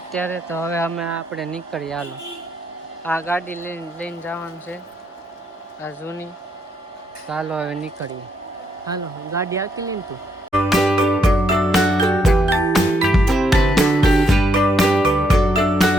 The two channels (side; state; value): both; normal; correlation 0.76